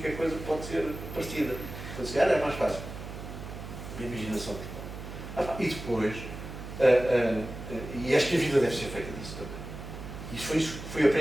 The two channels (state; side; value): noise; right; hum, 10 dB below the sound